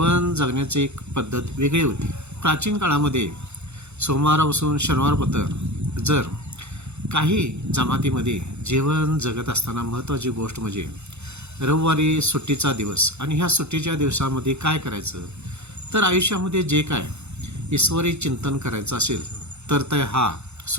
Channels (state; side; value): late; left; 0.81 ms